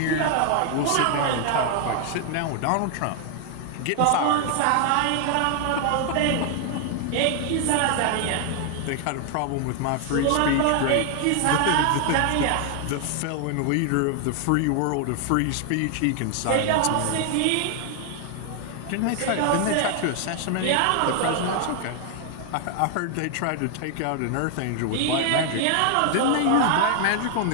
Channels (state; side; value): different; both; correlation 0.00